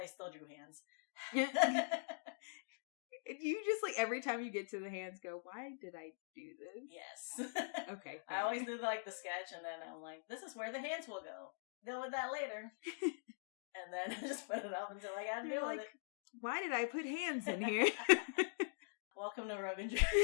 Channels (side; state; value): right; silent; digital silence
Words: still drew hands. You just, like, every time you get to the hands, go, why did I do this? Yes. Okay. I always do, like, the sketch, and then I'm like, this is where the hands will go. Deal with that later. And then I just put it up until I got to deal with it. Why did I put hands in here? Welcome to Rogan